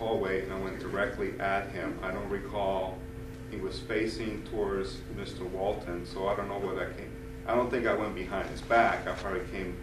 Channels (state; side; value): identical; both; correlation 1.00